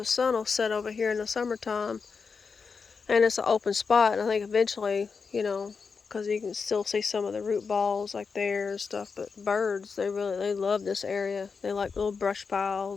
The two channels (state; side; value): quieter; right; 5.3 dB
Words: sun will set over here in the summertime, and it's an open spot. And I think eventually, because you can still see some of the root balls like there and stuff. But birds, they love this area. They like little brush